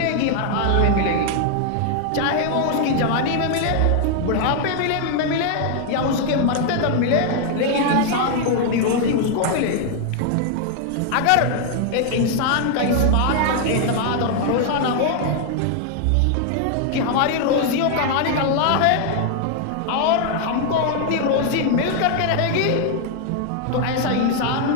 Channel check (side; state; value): both; different; correlation 0.00